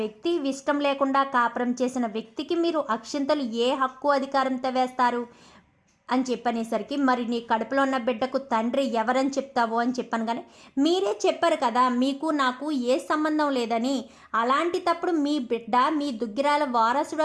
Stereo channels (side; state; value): both; identical; correlation 1.00